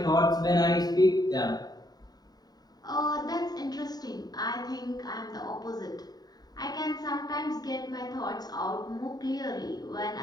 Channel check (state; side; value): late; right; 0.19 ms